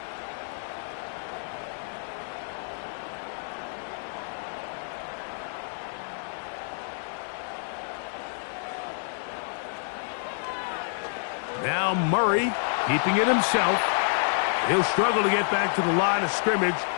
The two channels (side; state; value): right; silent; digital silence